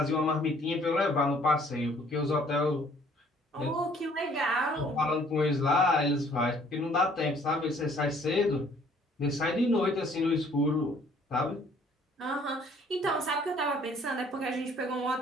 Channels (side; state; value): both; normal; correlation 0.59